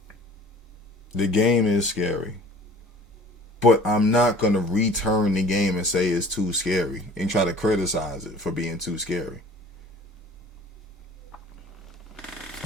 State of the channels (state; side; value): normal; both; correlation 0.48